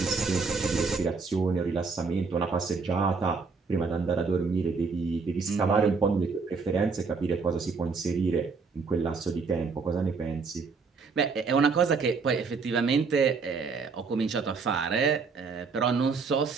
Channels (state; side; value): quieter; left; 4.8 dB